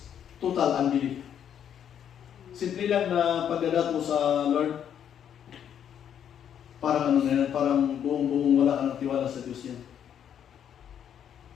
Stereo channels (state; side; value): quieter; right; 9.1 dB